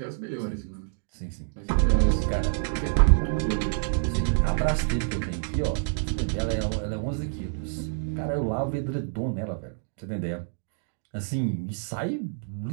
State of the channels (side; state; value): left; silent; digital silence